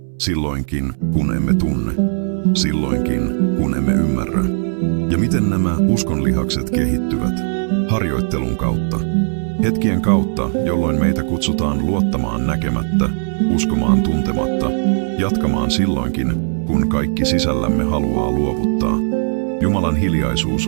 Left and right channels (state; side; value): silent; left; 63 dB below the other